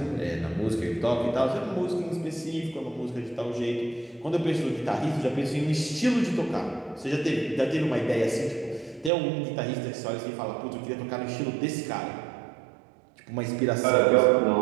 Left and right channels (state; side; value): drops out; left; at 9.1 s